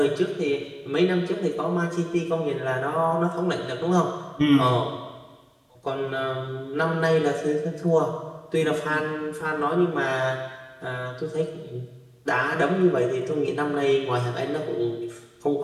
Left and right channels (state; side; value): identical; both; correlation 1.00